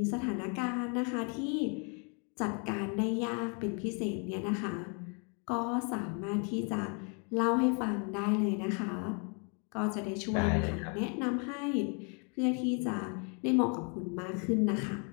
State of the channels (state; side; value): quieter; right; 37.1 dB